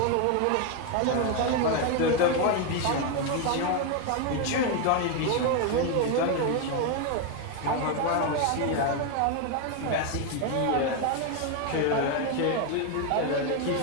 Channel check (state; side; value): different; both; correlation 0.01